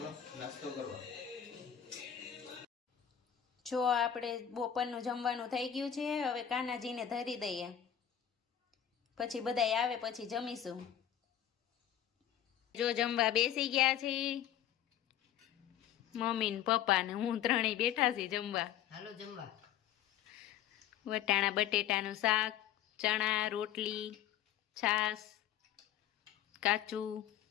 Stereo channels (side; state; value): right; quieter; 10.2 dB